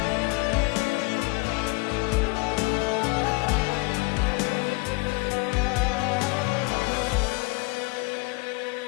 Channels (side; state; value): right; quieter; 26.5 dB